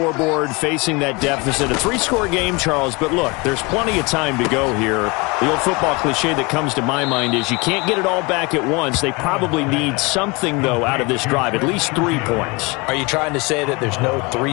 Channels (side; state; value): right; quieter; 27.1 dB